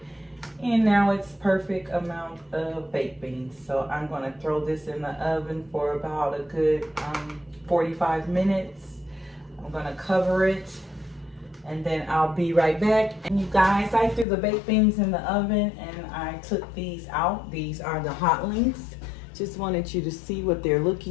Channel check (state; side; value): drops out; right; at 14.2 s